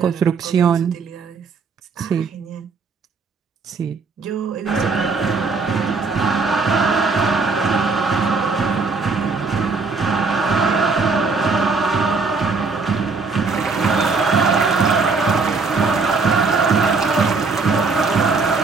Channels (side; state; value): left; quieter; 4.4 dB